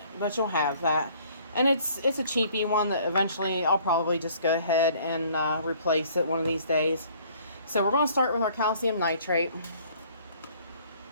you'll have that. And it's a cheapy one that eventually I'll probably just go ahead and replace it one of these days. So we're going to start with our calcium nitrate.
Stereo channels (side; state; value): both; inverted; correlation -0.57